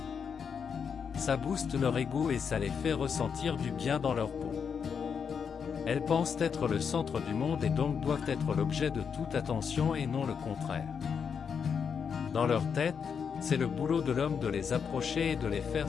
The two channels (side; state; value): right; quieter; 6.7 dB